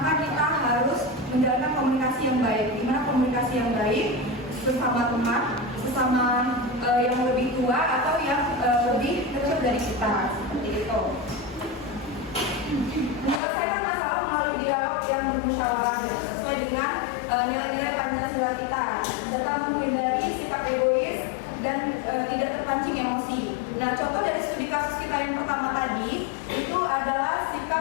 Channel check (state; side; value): drops out; right; at 13.4 s